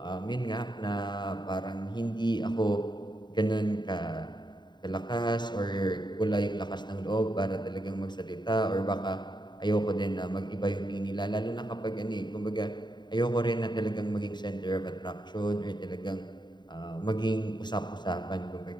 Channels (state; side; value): late; right; 0.21 ms